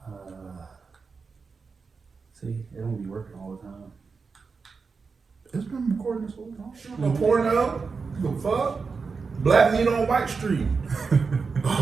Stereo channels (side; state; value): left; quieter; 4.9 dB